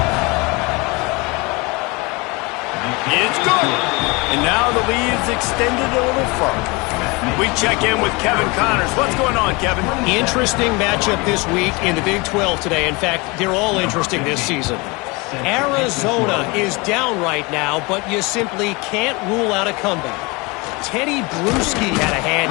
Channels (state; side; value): quieter; right; 26.4 dB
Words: It's good. And now the lead is extended a little further. We check in with Kevin Connors. What's going on, Kevin? Interesting matchup this week in the Big 12 today. In fact, they're all interesting this season. Arizona is down right now, but you simply can't rule out a comeback. Teddy Bruschi had a hand